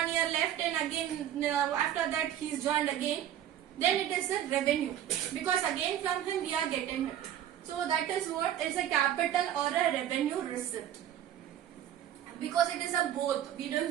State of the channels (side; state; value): left; quieter; 11.0 dB